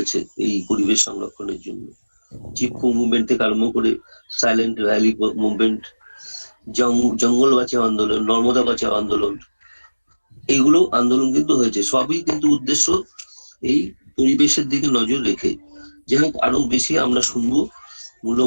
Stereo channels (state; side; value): inverted; both; correlation -1.00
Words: এই পরিবেশ সংরক্ষণের জন্য। চিপকো মুভমেন্ট থেকে আরম্ভ করে সাইলেন্ট ভ্যালি মুভমেন্ট, জঙ্গল বাঁচাও আন্দোলন, নর্মদা বাঁচাও আন্দোলন, এইগুলো আন্দোলন কিন্তু হয়েছে। সবই কিন্তু উদ্দেশ্য এই পরিবেশের দিকে নজর রেখে। যাই হোক, আরো বেশি আমরা শুনবো